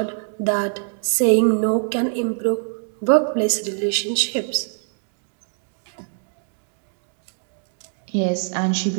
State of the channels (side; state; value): left; silent; 63 dB below the other